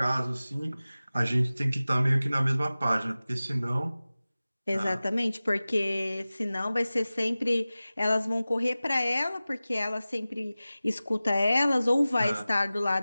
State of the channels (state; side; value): inverted; both; correlation -0.97